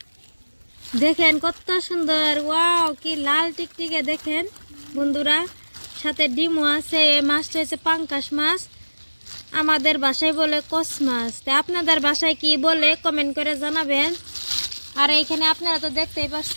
দেখেন কত সুন্দর ওয়াও কি লাল টিকটিকে দেখেন বন্ধুরা সাথে ডিমও আছে এই মাছটা হচ্ছে পাঙ্গাস মাছ আমাদের ভাষায় বলে কস মাছ তা আপনাদের ভাষায় কি বলে কমেন্ট করে জানাবেন আর এইখানে আপনারা তো দেখতেই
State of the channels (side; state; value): both; inverted; correlation -1.00